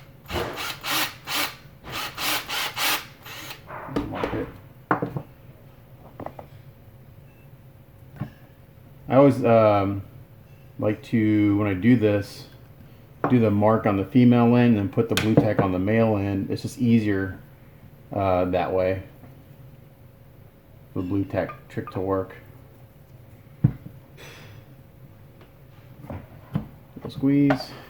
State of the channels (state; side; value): identical; both; correlation 1.00